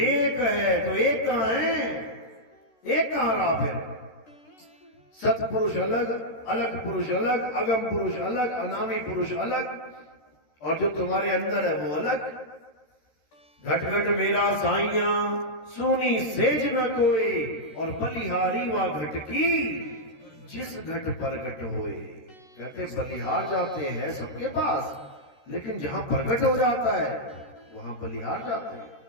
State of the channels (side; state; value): right; late; 13 ms